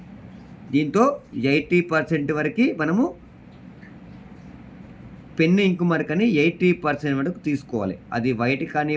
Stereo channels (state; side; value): identical; both; correlation 1.00